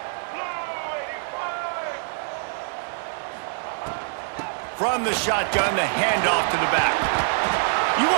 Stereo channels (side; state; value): left; silent; digital silence